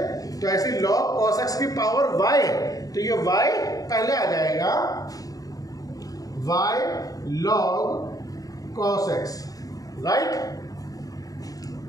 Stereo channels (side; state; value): right; late; 0.18 ms